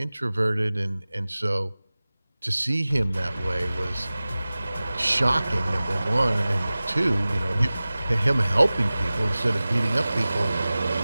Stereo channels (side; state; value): both; inverted; correlation -0.98